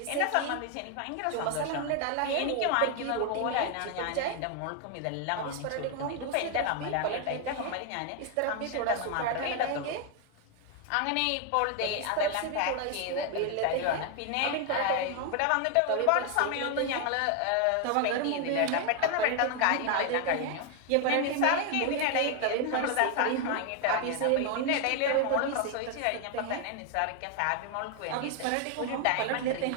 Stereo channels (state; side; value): different; both; correlation 0.01